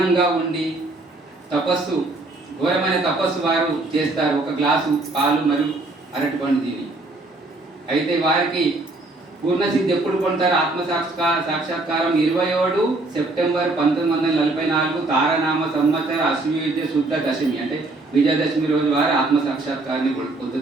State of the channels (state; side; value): quieter; left; 3.0 dB